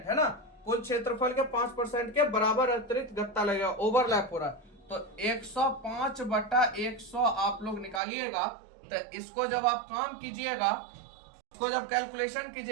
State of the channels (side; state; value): left; drops out; at 8.0 s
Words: है ना, कुल क्षेत्रफल के 5% के बराबर अतिरिक्त गत्ता लगेगा, ओवरलैप हो रहा है। तो 105 बटा 100 आप लोग निकालिएगा। तो इसको जब आप काम कीजिएगा, इसको जब कैलकुलेशन